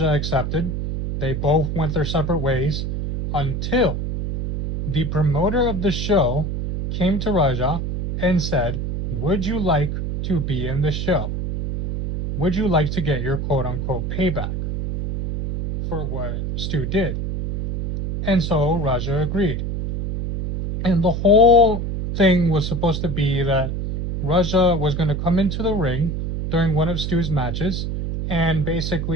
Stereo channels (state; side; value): noise; right; hum, 3 dB below the sound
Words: accepted. They both went their separate ways until the promoter of the show came to Raja and said, "Would you like to be in the show? Would you like to get your quote-unquote payback for what Stu did?" And so Raja agreed. And the whole thing was supposed to be that Raja was going to come into the ring during one of Stu's matches and